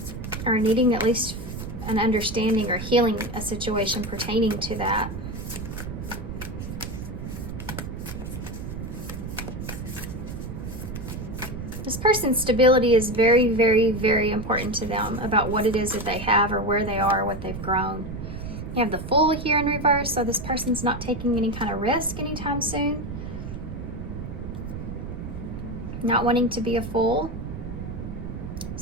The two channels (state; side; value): noise; right; rumble, 8 dB below the sound